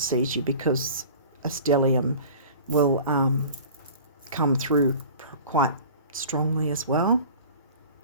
you, because a stellium will come through quite strongly as well.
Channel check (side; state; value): both; inverted; correlation -0.41